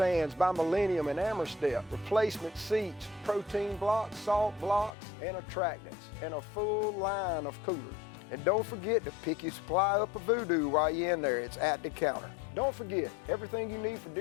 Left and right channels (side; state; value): right; drops out; at 4.9 s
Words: by Millennium and Amerstep, replacement seats, protein blocks, salt blocks, and attractants, and a full line of coolers. And don't forget to pick your supply up of Voodoo while you're in there. It's at the counter. Don't forget, everything you need for